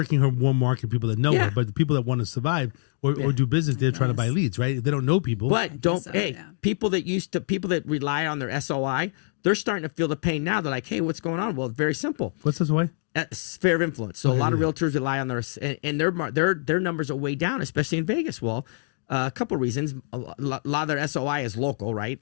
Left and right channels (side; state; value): right; silent; digital silence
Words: her warm market people that know her, but the people that want to survive or do business, they're trying to buy leads, right? They don't know people. But people that rely on their SOI, they're starting to feel the pain now. They're like, hey, what's going on? Well, it's very simple. What's SOI? Sphere of influence. So a lot of realtors rely on and their numbers are way down, especially in Vegas. Well, a couple of reasons. A lot of their SOI is local, right?